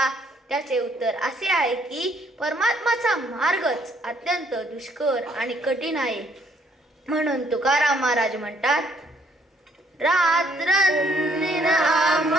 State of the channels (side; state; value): both; normal; correlation 0.66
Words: त्याचे उत्तर असे आहे की परमात्माचा मार्गच अत्यंत दुष्कर आणि कठीण आहे. म्हणून तुकाराम महाराज म्हणतात, रात्रंदिन